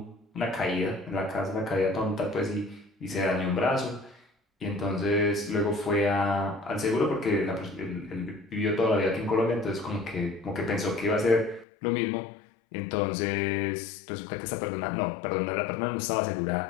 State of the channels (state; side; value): drops out; right; at 11.7 s